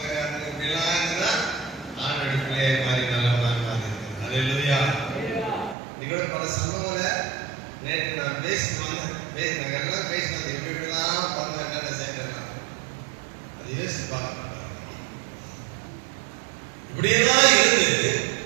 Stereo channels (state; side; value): drops out; left; at 5.8 s